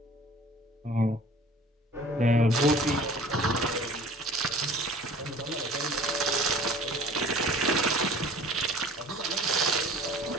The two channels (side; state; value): both; normal; correlation 0.47